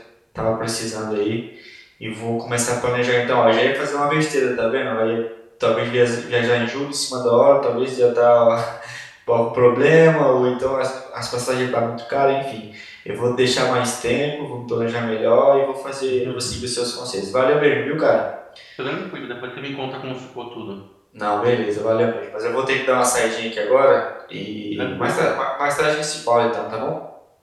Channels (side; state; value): both; identical; correlation 1.00